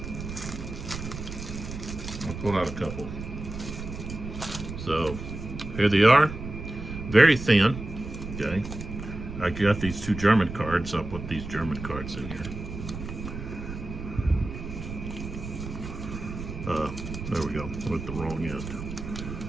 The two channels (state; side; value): noise; right; rumble, 9 dB below the sound